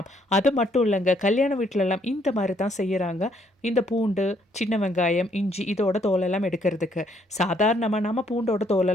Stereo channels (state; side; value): normal; both; correlation 0.68